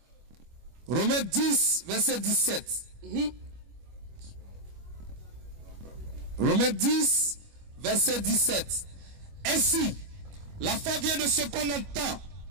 Romains 10, verset 17. Romains 10, verset 17. Ainsi, la foi vient de ce qu'on entend.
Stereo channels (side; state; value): left; late; 25 ms